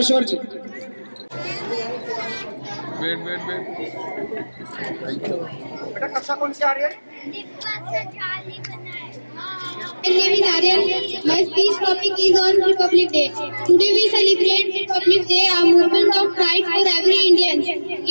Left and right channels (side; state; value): both; inverted; correlation -1.00